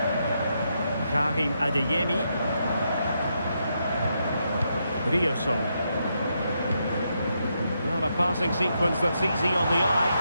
Karim Adeyemi. Rioson. Well, a passing sequence that's easy on the eye.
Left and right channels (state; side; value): inverted; both; correlation -0.81